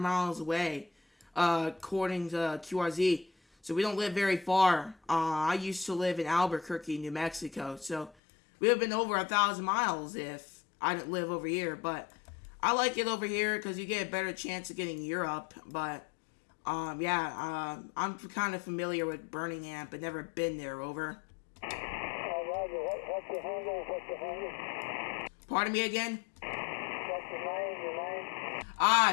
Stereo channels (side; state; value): right; drops out; at 8.2 s